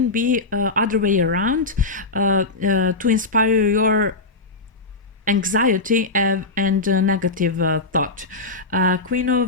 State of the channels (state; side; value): quieter; right; 3.4 dB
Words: be other way around, to inspire your anxiety and negative thought. Queen